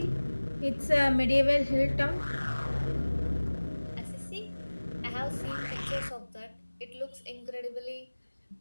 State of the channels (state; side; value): inverted; both; correlation -1.00